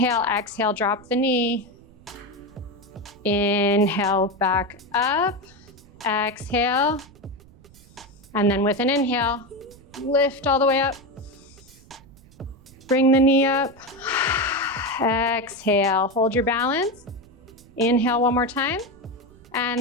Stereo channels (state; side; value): noise; right; rumble, 24 dB below the sound